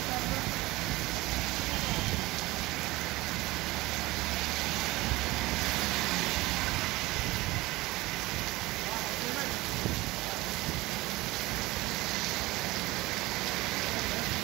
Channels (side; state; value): left; quieter; 19.9 dB